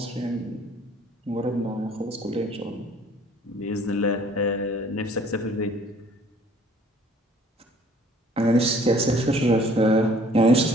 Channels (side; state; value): both; normal; correlation 0.56